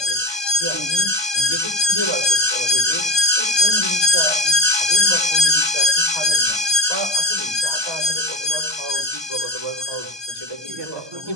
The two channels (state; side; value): late; left; 1.2 ms